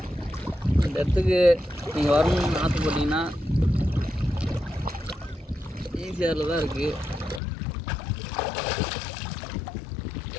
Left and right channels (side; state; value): right; drops out; at 7.4 s